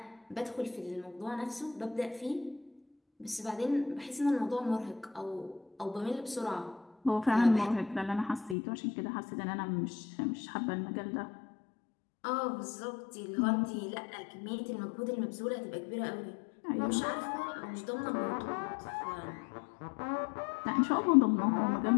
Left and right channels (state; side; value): drops out; right; at 8.6 s